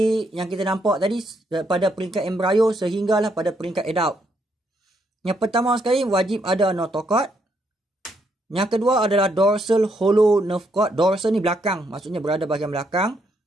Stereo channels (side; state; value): both; normal; correlation 0.75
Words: yang kita nampak tadi pada peringkat embrio sehinggalah pada peringkat adult. Yang pertama sekali wajib ada notochord. Yang kedua adalah dorsal hollow nerve cord. Dorsal ni belakang, maksudnya berada bahagian belakang,